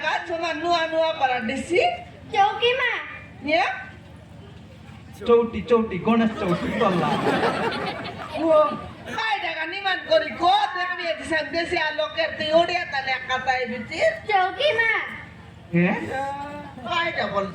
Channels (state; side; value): identical; both; correlation 1.00